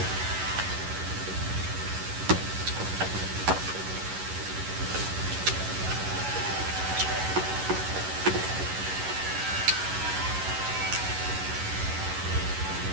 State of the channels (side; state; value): left; late; 11 ms